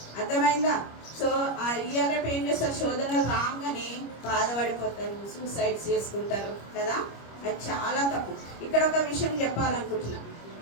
అర్థమైందా? సో ఇయ్యాలపై ఏం చేస్తారు? శోధనలు రాగానే బాధపడిపోతారు, సూసైడ్స్ చేసుకుంటారు కదా. అది చాలా తప్పు. ఇక్కడ ఒక విషయం చెప్పాలనుకుంటున్నా.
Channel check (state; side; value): late; right; 25 ms